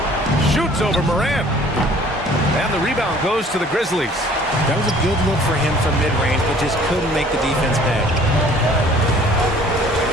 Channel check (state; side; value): normal; both; correlation 0.54